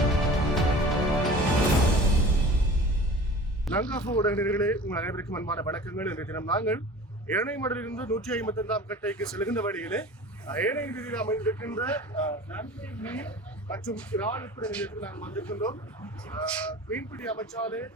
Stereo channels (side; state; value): both; normal; correlation 0.41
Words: லங்காபோ உடனடிகளே உங்கள் அனைவருக்கும் அன்பான வணக்கங்கள். இன்றைய தினம் நாங்கள் ஏனைமடலிலிருந்து 155ஆம் கட்டைக்கு செல்கின்ற வழியிலே ஏனை வீதியில் அமைந்திருக்கின்ற மற்றும் இறால் விற்பனை நிலையத்தில் நாங்கள் வந்திருக்கின்றோம். மீன்பிடி அமைச்சாலே